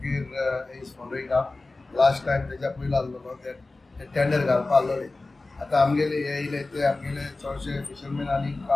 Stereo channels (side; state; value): right; quieter; 3.3 dB